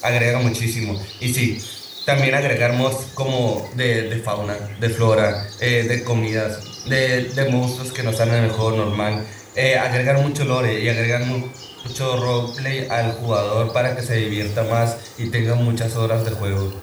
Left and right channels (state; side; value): identical; both; correlation 1.00